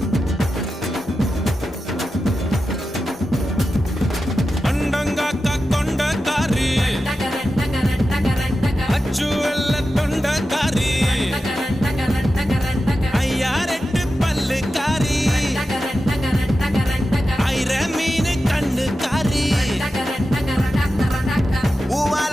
அண்டங்காக்கா கொண்டக்காரி அச்சு வெள்ள தொண்டக்காரி ஐயாரெட்டு பல்லுக்காரி ஐர மீன் கண்ணுக்காரி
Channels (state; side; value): normal; both; correlation 0.92